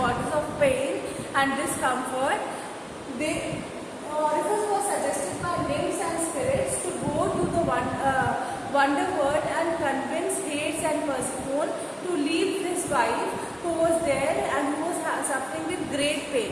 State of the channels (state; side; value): identical; both; correlation 1.00